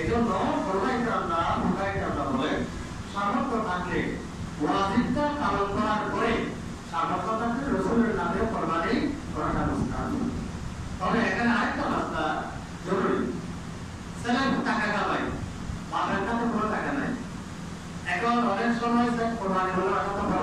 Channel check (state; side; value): identical; both; correlation 1.00